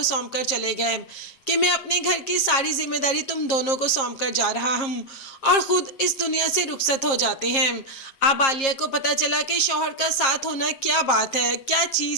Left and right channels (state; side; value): late; right; 7.5 ms